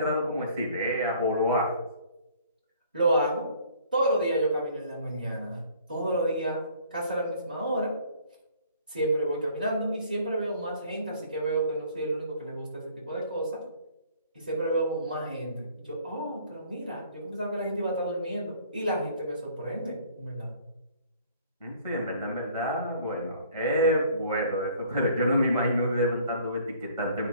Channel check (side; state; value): both; inverted; correlation -0.55